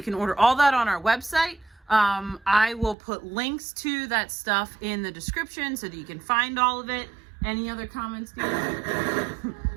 can order all that on our website. I will put links to that stuff in the description so that you can find all of it. Any other comments, Steve?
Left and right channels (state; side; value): drops out; left; at 3.0 s